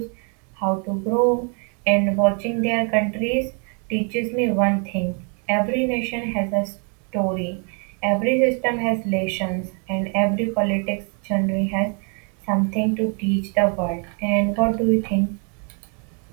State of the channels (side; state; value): left; quieter; 38.4 dB